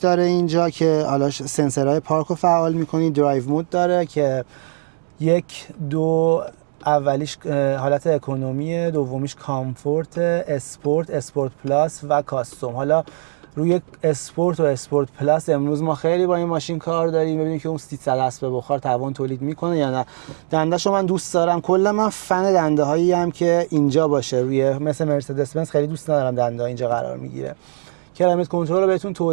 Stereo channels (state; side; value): silent; left; digital silence